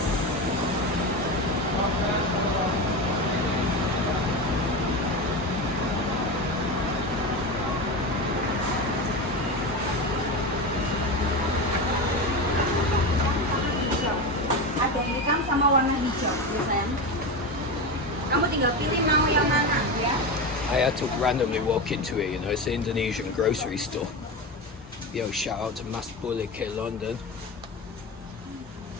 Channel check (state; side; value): normal; both; correlation 0.21